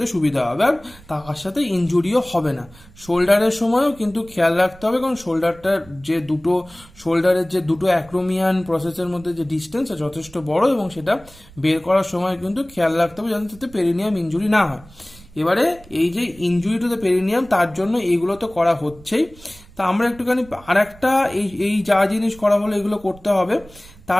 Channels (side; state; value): right; noise; rumble, 23 dB below the sound